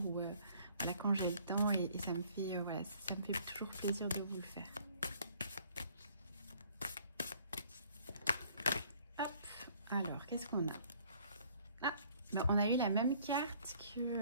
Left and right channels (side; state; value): both; inverted; correlation -0.59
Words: ou voilà, quand j'ai le temps, et ça me fait voilà, ça me fait toujours plaisir de vous le faire. Hop, alors qu'est-ce qu'on a? Ah, ben, on a eu la même carte que